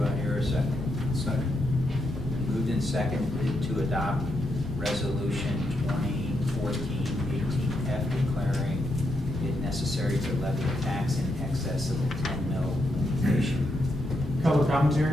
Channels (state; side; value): normal; both; correlation 0.82